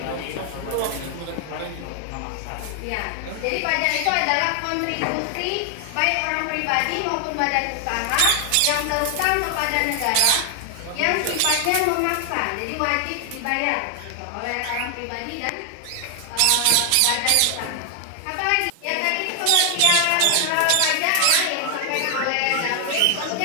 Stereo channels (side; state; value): both; different; correlation 0.00